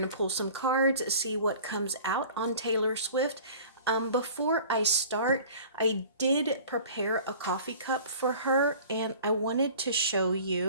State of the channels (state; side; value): inverted; both; correlation -0.44